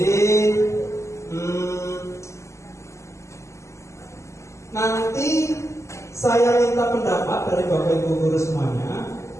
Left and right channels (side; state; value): right; late; 0.14 ms